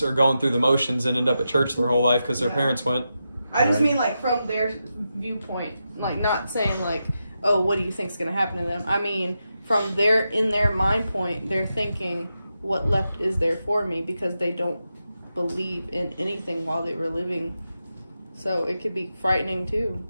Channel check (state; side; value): inverted; both; correlation -0.88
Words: are going through the motions and end up at church their whole life because their parents went. I just mean like from their viewpoint, like not saying like, oh, what do you think's gonna happen to them? I mean, from in their mind point, they're thinking, what left is there for me, because they don't believe in anything while they were living. So it could be frightening too.